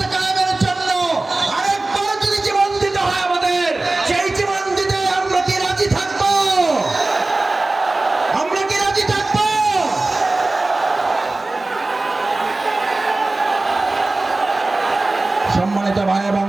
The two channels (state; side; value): quieter; left; 3.1 dB